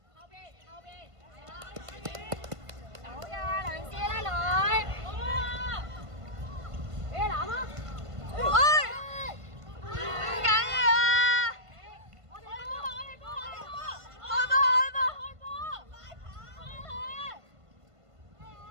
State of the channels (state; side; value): late; left; 1.5 ms